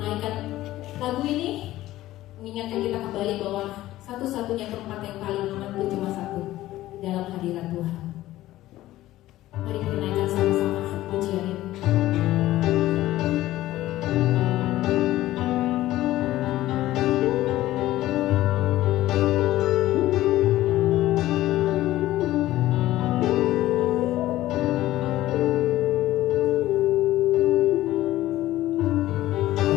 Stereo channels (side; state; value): right; quieter; 15.4 dB